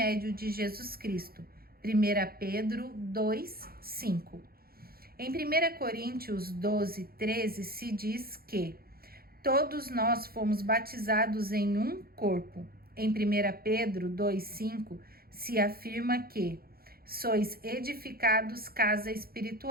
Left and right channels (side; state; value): left; late; 0.44 ms